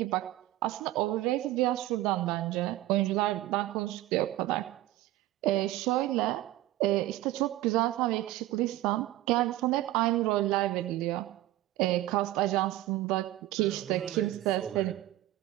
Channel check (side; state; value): left; quieter; 16.0 dB